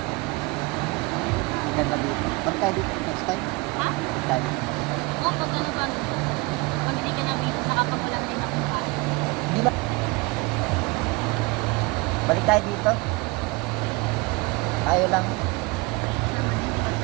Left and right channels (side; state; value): left; quieter; 24.9 dB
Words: Ang ganda dito. Ba't tayo dito? Next time? Ha? Ba't tayo? Oo, pag ano ba? Pag hindi ka na busy, saka pag wala din ang kain. Hindi ba? Balik tayo dito. Tayo lang.